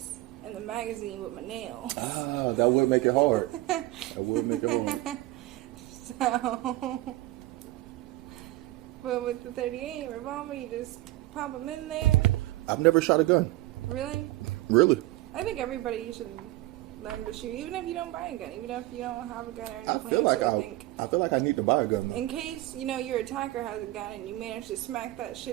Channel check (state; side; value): quieter; left; 17.8 dB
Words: in the magazine with my nails. Ah, that would make it hard. That would make it hard. So, but with the 38 revolver, you just pop them in there. I've never shot a gun. Really? Really? I think everybody should learn to shoot, even if you don't buy a gun, even if you don't have a gun or I anything. feel like I need to buy a gun, though. In case, your attacker has a gun and you manage to smack that